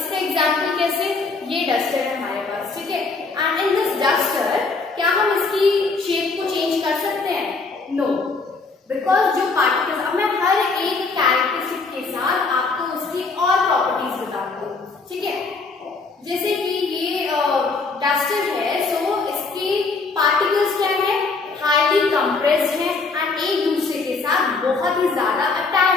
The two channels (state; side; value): quieter; right; 4.1 dB